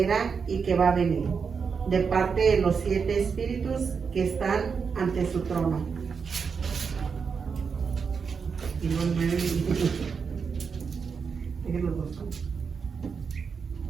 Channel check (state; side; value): quieter; left; 5.8 dB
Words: era y que va a venir, de parte de los 7 espíritus que están ante su trono. Y los 9